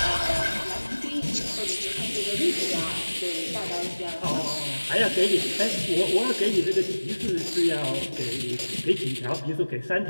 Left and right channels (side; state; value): both; inverted; correlation -1.00